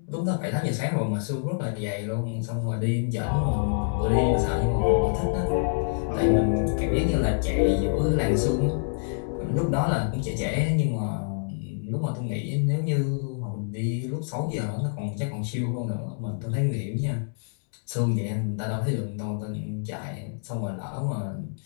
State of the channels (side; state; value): right; silent; digital silence